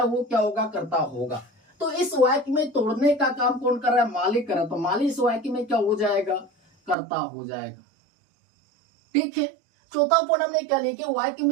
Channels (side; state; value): left; drops out; at 7.0 s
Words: वो क्या होगा, कर्ता होगा। तो इस वाक्य में तोड़ने का काम कौन कर रहा है, माली कर रहा है, तो माली इस वाक्य में क्या हो जाएगा, कर्ता हो जाएगा। ठीक है। चौथा पॉइंट हमने क्या लिखे, वाक्य